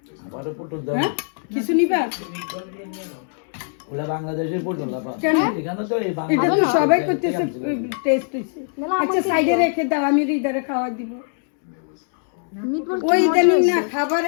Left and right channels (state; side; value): silent; right; 64 dB below the other